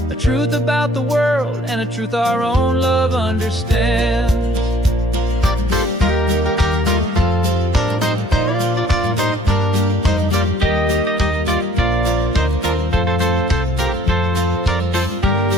a truth about the world and a truth our own love understands.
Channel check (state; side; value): normal; both; correlation 0.57